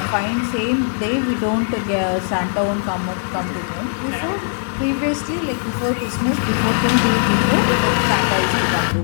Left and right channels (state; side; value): silent; right; 66 dB below the other